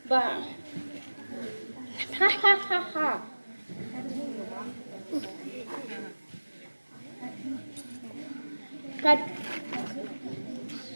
हा हा हा हा।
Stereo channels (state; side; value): inverted; both; correlation -1.00